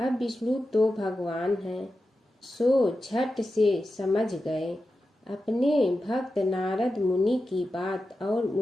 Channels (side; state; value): both; normal; correlation 0.91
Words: विष्णु तो भगवान हैं, सो झट से समझ गए अपने भक्त नारद मुनि की बात और